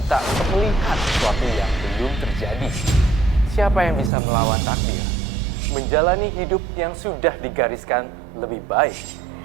untuk melihat sesuatu yang belum terjadi. Siapa yang bisa melawan takdir? Menjalani hidup yang sudah digariskan lebih baik.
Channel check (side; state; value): left; drops out; at 4.1 s